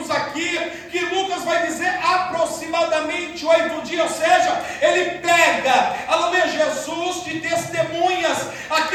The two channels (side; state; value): both; identical; correlation 1.00